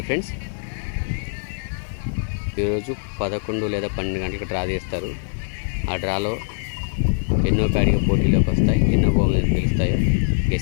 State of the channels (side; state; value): right; silent; 64 dB below the other